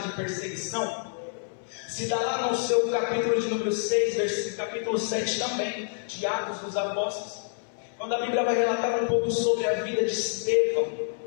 de perseguição, se dá lá no seu capítulo de número 6, versículo capítulo 7 também, de Atos dos Apóstolos, quando a Bíblia vai relatar um pouco sobre a vida de Estevão.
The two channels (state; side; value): silent; right; 60 dB below the other